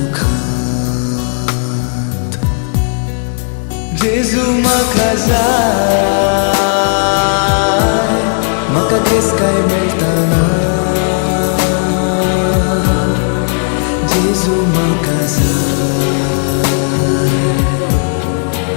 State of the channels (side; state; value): right; silent; 63 dB below the other